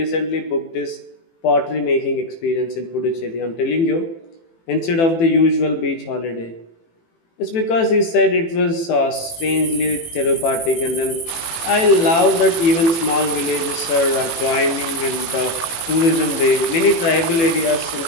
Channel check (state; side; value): late; right; 18 ms